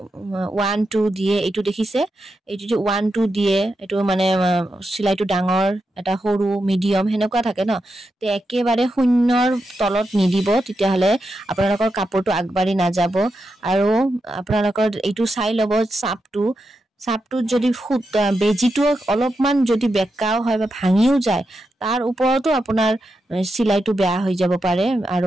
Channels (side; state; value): both; normal; correlation 0.87